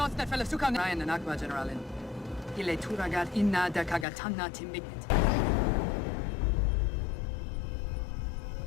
na felasukan Ryan and Akba Generalin. Ile turagat inna da kagatana timbigit.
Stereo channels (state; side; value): drops out; right; at 4.0 s